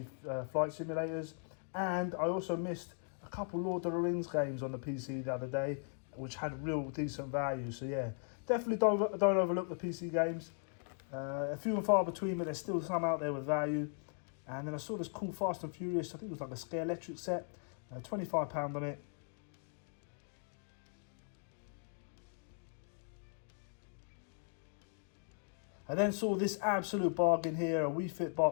flight simulators. And I also missed a couple Lord of the Rings games on the PC the other day, which had real decent value. So yeah, definitely don't overlook the PC games. A few and far between, but there's still some out there with value. And then I saw this cool Fast and Furious, I think it was like a Scare Electric set, £25 on it. I then saw this absolute bargain here, a Wii Fit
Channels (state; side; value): silent; right; 52 dB below the other